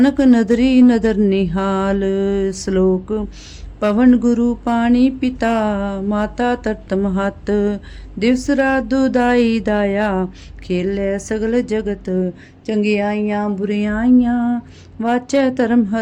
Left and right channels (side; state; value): both; identical; correlation 1.00